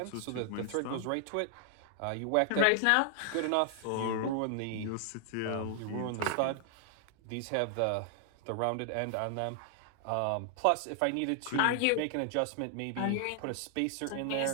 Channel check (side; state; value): both; different; correlation 0.00